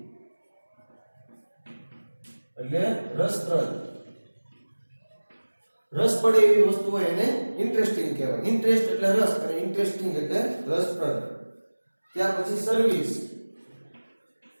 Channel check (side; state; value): both; inverted; correlation -1.00